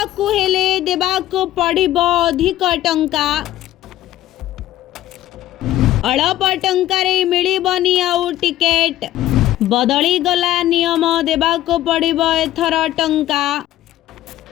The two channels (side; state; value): right; quieter; 13.9 dB